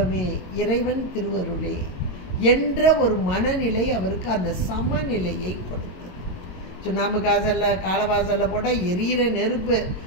இறைவன் திருவருளே என்ற ஒரு மனநிலை அவருக்கு அந்த சமநிலையை கொடுத்தது. சுண்ணாம்பு காசல்ல காலவாசல்ல போட்டால் எரியிற நெருப்பு,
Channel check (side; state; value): right; late; 22 ms